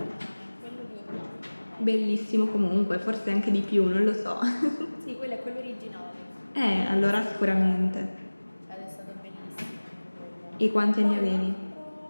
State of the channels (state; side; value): inverted; both; correlation -1.00